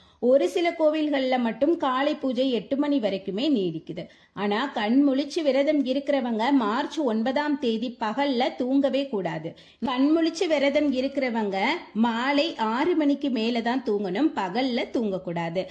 ஒரு சில கோவில்கள்ல மட்டும் காலை பூஜை 8 மணி வரைக்குமே நீடிக்குது. ஆனா கண் முழிச்சு விரதம் இருக்கிறவங்க மார்ச் 9ஆம் தேதி பகல்ல தூங்கவே கூடாது. கண் முழிச்சு விரதம் இருக்கிறவங்க மாலை 6 மணிக்கு மேலதான் தூங்கணும், பகல்ல தூங்கக்கூடாது.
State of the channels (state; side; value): identical; both; correlation 1.00